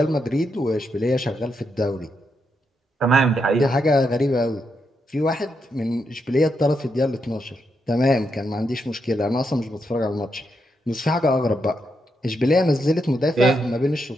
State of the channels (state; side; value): normal; both; correlation 0.82